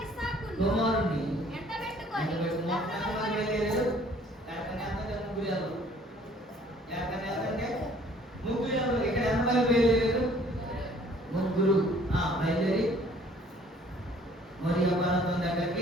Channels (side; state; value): both; normal; correlation 0.57